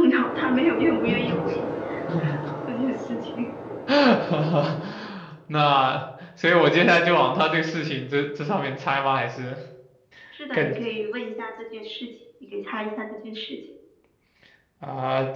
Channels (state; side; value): identical; both; correlation 1.00